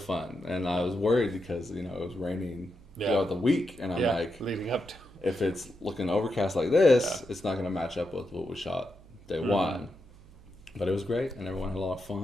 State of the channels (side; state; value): right; noise; hum, 22 dB below the sound